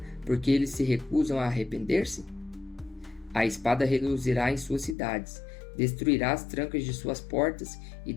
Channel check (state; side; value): drops out; right; at 5.0 s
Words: porque eles se recusam a arrepender-se? A espada reduzirá em suas cidades, destruirá as trancas de suas portas e